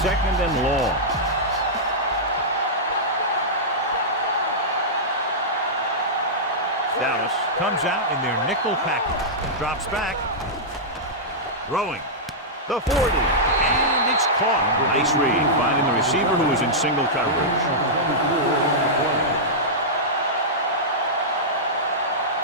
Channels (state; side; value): normal; both; correlation -0.11